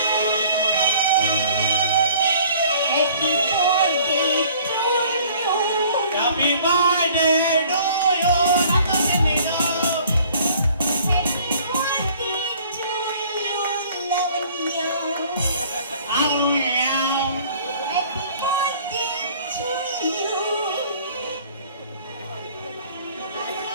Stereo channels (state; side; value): inverted; both; correlation -0.54